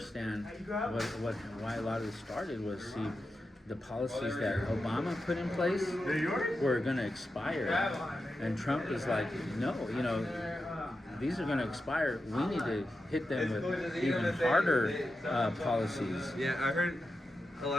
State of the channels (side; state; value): both; normal; correlation 0.90